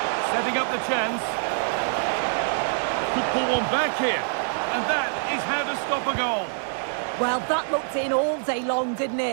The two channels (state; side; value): silent; left; digital silence